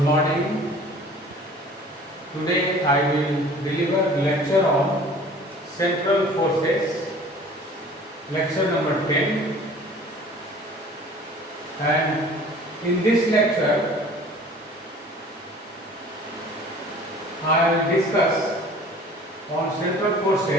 morning. Today I will deliver lecture on central forces, lecture number 10. And in this lecture, I will discuss on central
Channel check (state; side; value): normal; both; correlation 0.47